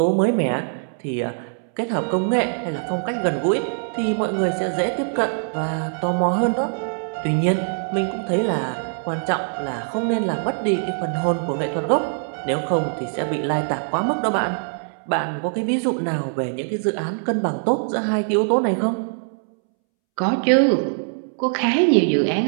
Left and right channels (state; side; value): silent; left; 64 dB below the other